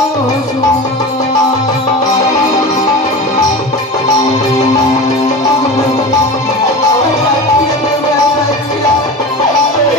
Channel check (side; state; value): both; normal; correlation 0.30